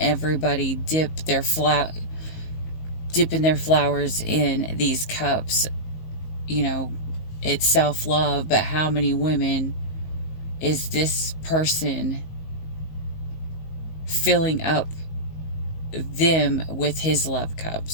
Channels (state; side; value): late; right; 19 ms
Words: dipping their flowers in these cups. It's self-love, but how many women is this person filling up them with his love